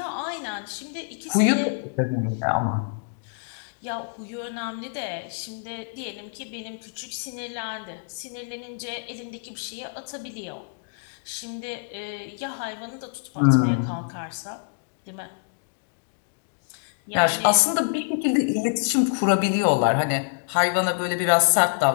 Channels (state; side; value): silent; right; digital silence